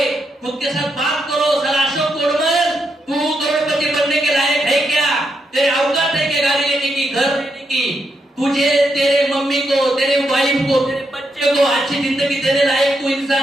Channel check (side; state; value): both; normal; correlation 0.81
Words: खुद के साथ बात करो। साला अशोक कोडमल, तू करोड़पति बनने के लायक है क्या? तेरे औकात है क्या गाड़ी लेने की, घर लेने की? तुझे, तेरे मम्मी को, तेरे वाइफ को, तेरे बच्चे को अच्छी जिंदगी देने लायक तू